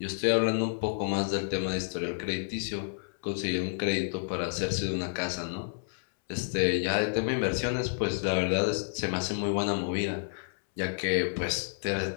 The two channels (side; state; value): right; silent; 58 dB below the other